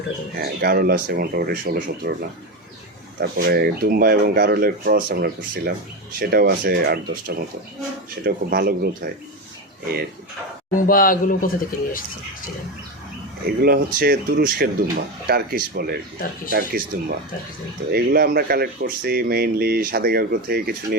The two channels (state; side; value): normal; both; correlation 0.17